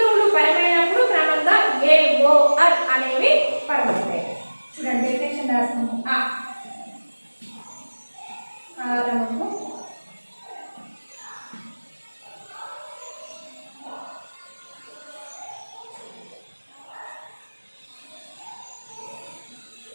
పరమైనప్పుడు క్రమంగా ఏ ఓ అర్ అనేవి పరమవుతాయి. చూడండి, డెఫినేషన్ రాస్తుంది. ఆరము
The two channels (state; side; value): inverted; both; correlation -1.00